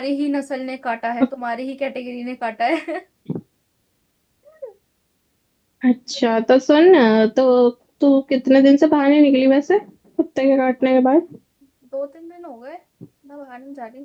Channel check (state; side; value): identical; both; correlation 1.00